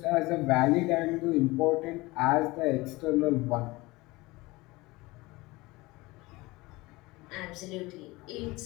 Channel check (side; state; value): right; quieter; 21.8 dB